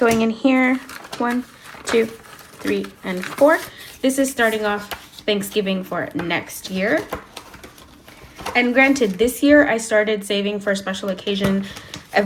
in here. 1, 2, 3, and 4. This is starting off Thanksgiving for next year. And granted, this year I started saving for special occasion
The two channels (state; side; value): identical; both; correlation 1.00